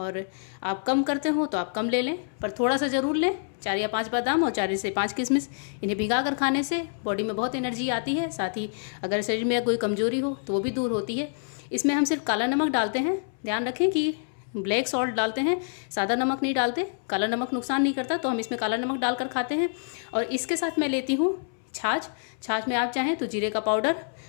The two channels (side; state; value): right; silent; 59 dB below the other